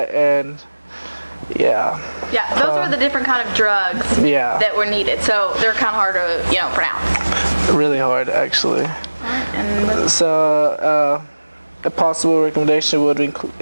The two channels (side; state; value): both; inverted; correlation -1.00